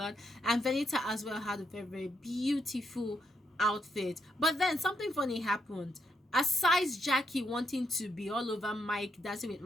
and Venita as well had a very beautiful outfit. But then something funny happened. Aside Jackie wanting to be all over Mike, dancing with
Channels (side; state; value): both; normal; correlation 0.79